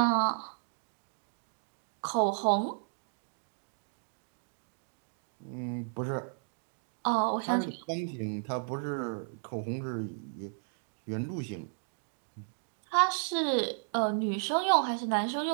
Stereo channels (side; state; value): left; silent; digital silence